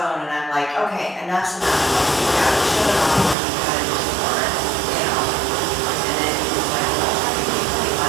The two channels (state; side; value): drops out; left; at 3.4 s